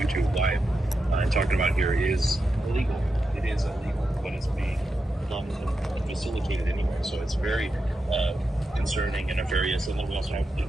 live and talking about here is illegal. It is illegal, but it's being facilitated anyway. So it's very concerning and nefarious. And then we also have,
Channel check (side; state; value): both; normal; correlation 0.88